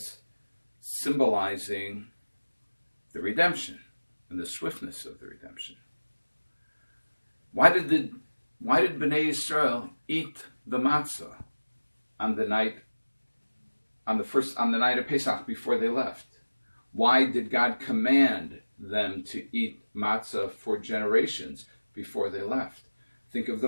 symbolizing the redemption and the swiftness of the redemption. Why did Bnei Yisrael eat the matzah on the night of Pesach before they left? Why did God command them to eat matzah for generations before they left? Think of the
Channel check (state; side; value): inverted; both; correlation -1.00